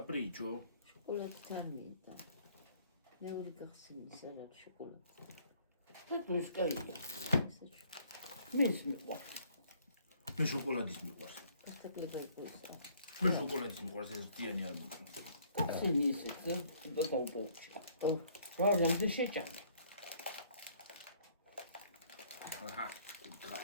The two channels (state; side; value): inverted; both; correlation -0.61